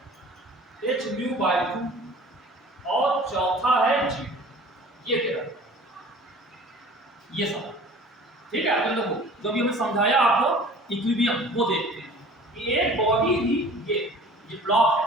h म्यू बाय 2 और चौथा है g, ये तेरा ये सब, ठीक है। तो देखो जो भी हमने समझाया आपको इक्विलिब्रियम वो देखते हैं कि एक बॉडी थी, ये ब्लॉक है,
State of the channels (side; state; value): both; normal; correlation 0.46